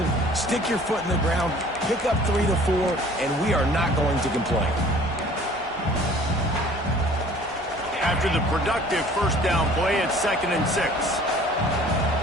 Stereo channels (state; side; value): normal; both; correlation 0.51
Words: stick your foot in the ground, pick up 3 to 4, and we are not going to complain. After the productive first down play, it's 2nd and 6.